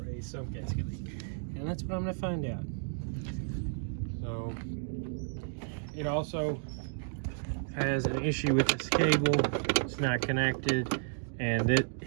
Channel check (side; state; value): left; silent; digital silence